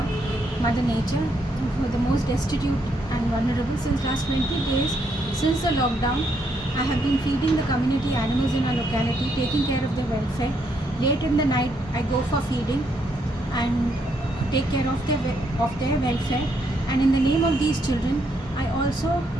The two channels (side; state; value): both; normal; correlation 0.75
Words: Mother Nature, who are the most destitute and vulnerable. Since last 20 days, since the lockdown, I have been feeding the community animals in our locality, taking care of their welfare. Late in the night, I go for feeding and take care of their welfare. And in the name of these children, I also